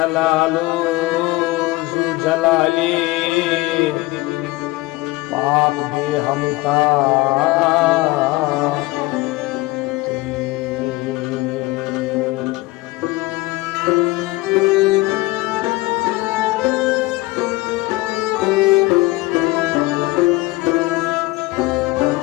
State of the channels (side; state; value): right; quieter; 20.8 dB